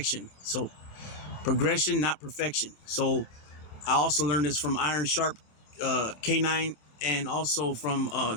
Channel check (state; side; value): late; right; 27 ms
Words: So progression, not perfection. So I also learned this from Iron Sharp K9, and also from